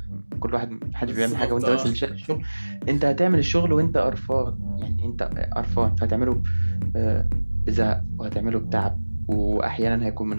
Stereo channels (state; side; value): inverted; both; correlation -1.00